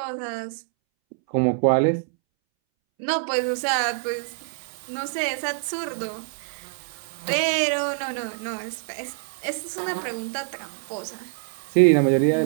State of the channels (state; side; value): silent; left; 62 dB below the other